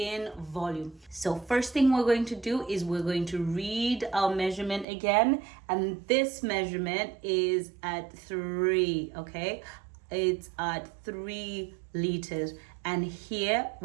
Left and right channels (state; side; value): drops out; left; at 4.9 s